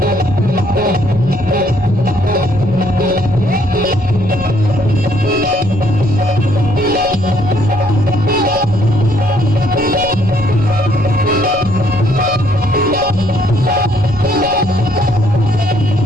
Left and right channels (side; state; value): right; noise; rumble, 13 dB below the sound